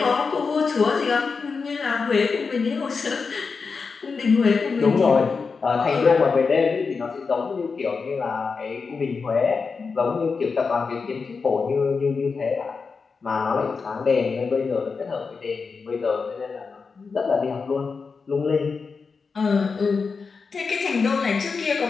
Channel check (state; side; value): quieter; right; 4.9 dB